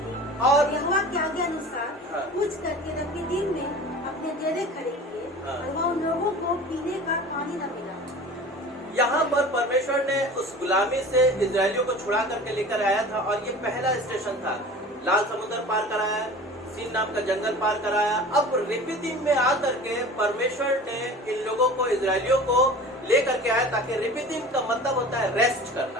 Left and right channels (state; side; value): normal; both; correlation 0.39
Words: और यहोवा के आज्ञा अनुसार कूच करके रफीदीम में अपने डेरे खड़े किए, और वहाँ उन लोगों को पीने का पानी न मिला। यहाँ पर परमेश्वर ने उस गुलामी से इजरायलियों को छुड़ा करके लेकर आया था, और ये पहला स्टेशन था। लाल समुद्र पार कराया, सीन नाम का जंगल पार कराया। अब रिफीदीम में आकर के परमेश्वर ने इन लोगों को, इजरायलियों को लेकर के आया, ताकि रिफीदीम का मतलब होता है रेस्ट